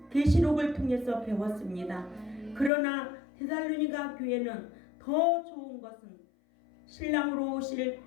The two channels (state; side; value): drops out; right; at 2.7 s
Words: 계시록을 통해서 배웠습니다. 그러나 데살로니가 교회는 더 좋은 것은 신랑으로 오실